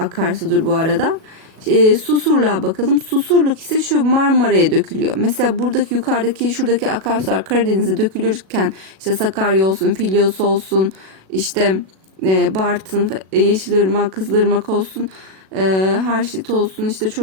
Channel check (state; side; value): late; left; 37 ms